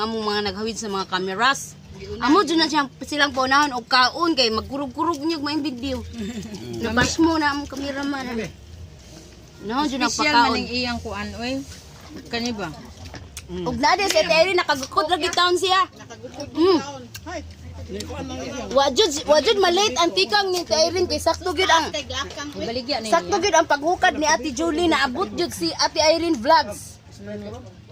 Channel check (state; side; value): identical; both; correlation 1.00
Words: mga naghawid sa mga cameras. Amo dyan na silang paunahon o kaon kay magkurug-kurug niyo maing video. Nabas mo na among cameraman. Unahon dyan ang Special pakaon. maning iyang kuan, oy. Kani ba? Ug na din si Terry nakagukod lagi taon siya. Hay. Ni ko anang iya. Wajud malate ang tikang ni Terry kay sakto gid ang Baligya ni. sakto gid ang paghukad ni Ate Julie na abot jud si Ate Irene Vlogs.